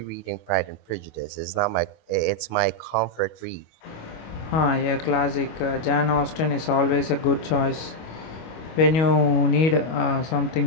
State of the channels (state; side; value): late; right; 25 ms